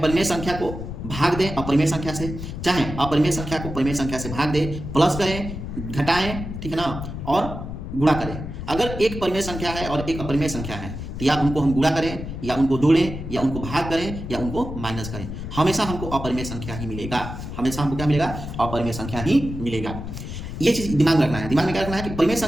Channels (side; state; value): left; noise; rumble, 8 dB below the sound